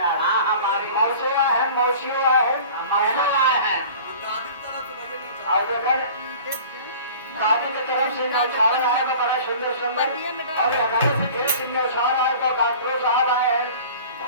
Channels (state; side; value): inverted; both; correlation -0.43